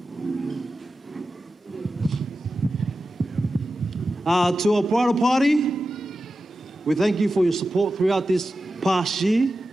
To our bridal party, we thank you for your support throughout this past year.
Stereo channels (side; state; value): both; normal; correlation 0.93